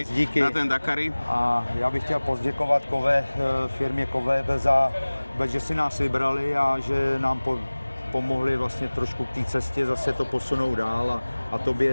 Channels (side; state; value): both; inverted; correlation -1.00